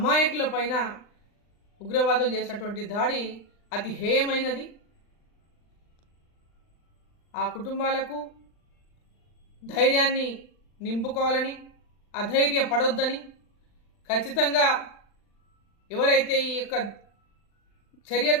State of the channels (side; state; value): right; late; 39 ms